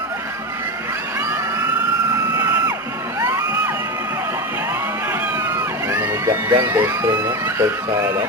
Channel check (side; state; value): both; normal; correlation 0.18